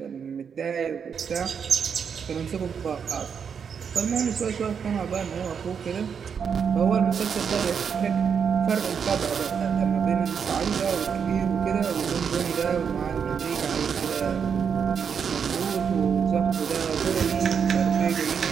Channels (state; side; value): quieter; left; 6.9 dB